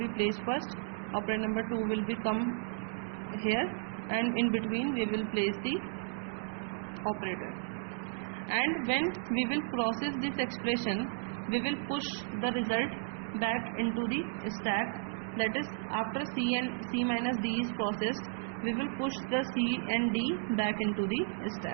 placed first, operand number 2 will become here, and in between we will place the operator. And when we will process this expression, we will push the result back into the stack. That is, after C minus D is processed, we will push the C and D back into the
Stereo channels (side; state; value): left; silent; digital silence